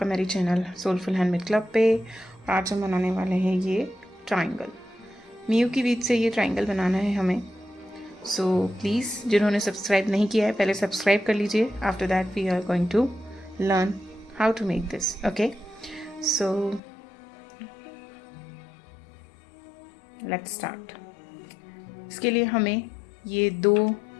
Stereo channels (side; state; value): right; drops out; at 16.8 s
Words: मेरी चैनल सोलफुल हैंडमेड क्लब पे। आज हम बनाने वाले हैं ये ट्रायंगल। मियू की बीज से ये ट्रायंगल बनाना है हमें। सो प्लीज़ जिन्होंने सब्सक्राइब नहीं किया है पहले सब्सक्राइब कर लीजिए। After that we are going to learn how to make this. Okay, so let's start. इसके लिए हमें ये दो